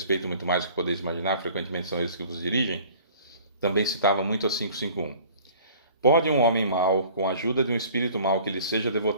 muito mais do que podeis imaginar, frequentemente são eles que vos dirigem. Também citava muito a 551. Pode um homem mau, com a ajuda de um espírito mau que lhe seja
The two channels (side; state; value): both; inverted; correlation -0.49